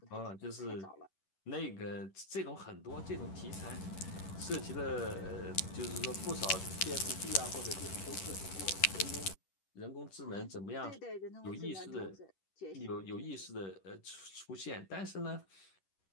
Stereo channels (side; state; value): right; late; 10 ms